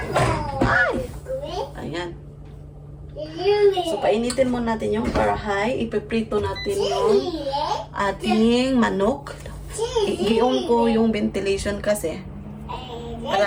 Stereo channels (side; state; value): both; identical; correlation 1.00